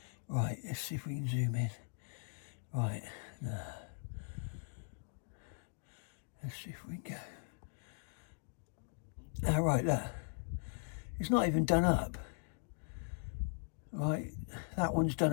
Right, let's see if we can zoom in. Right, no. Let's see if we can go. Right, look. It's not even done up. Right, that one's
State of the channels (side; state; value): right; silent; digital silence